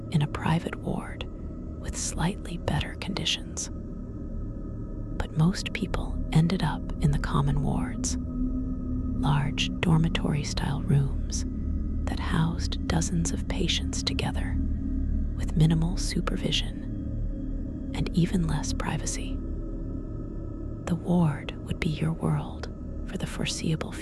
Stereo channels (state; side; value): identical; both; correlation 1.00